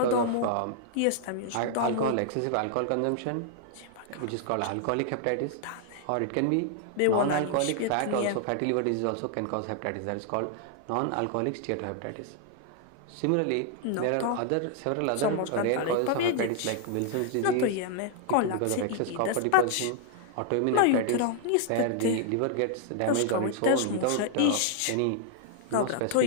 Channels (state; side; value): different; both; correlation 0.00